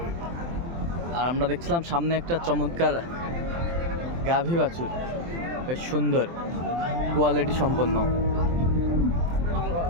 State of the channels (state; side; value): late; left; 23 ms